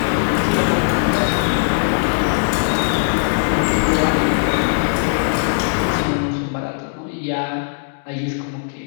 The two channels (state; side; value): silent; right; digital silence